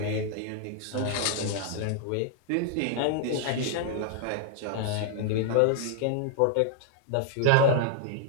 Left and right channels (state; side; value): different; both; correlation -0.01